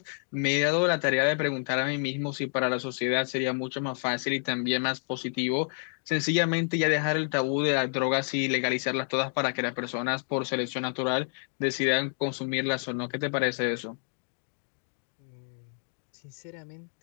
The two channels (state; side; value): silent; right; 59 dB below the other